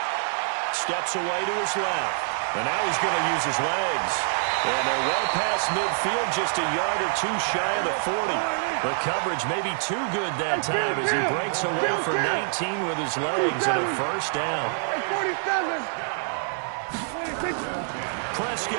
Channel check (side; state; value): left; silent; digital silence